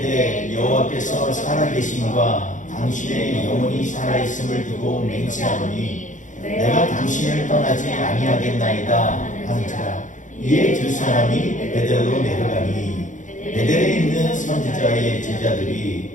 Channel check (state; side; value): late; right; 0.36 ms